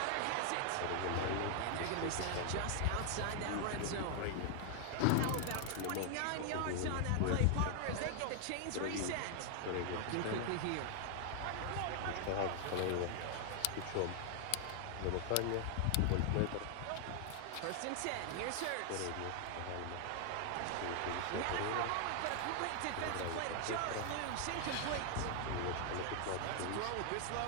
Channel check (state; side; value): different; both; correlation 0.00